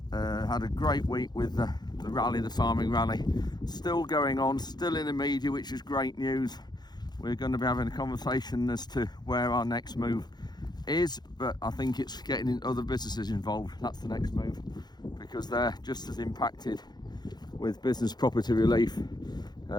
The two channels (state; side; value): late; right; 0.20 ms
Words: had a great week with the rally, the farming rally, still going on, still in the media, which is great news. We're going to be having a conversation as to where our next move is, but I think it's getting other businesses involved. That's the next move, because they're just as impacted with business property relief,